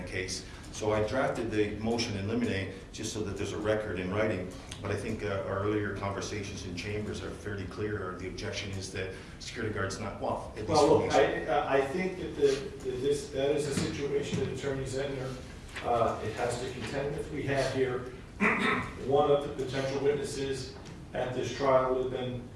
case. So I drafted the motion in limine just so that there's a record in writing, but I think our earlier conversations in chambers are fairly clear. The objection is that security guard's not, well, at least... Well, look, I think that that is a situation that Attorney Zentner it has to contend with. We have here one of the potential witnesses at this trial would have been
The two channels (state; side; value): identical; both; correlation 1.00